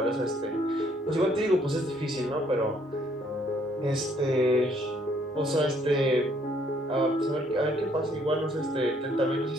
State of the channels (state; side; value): normal; both; correlation 0.66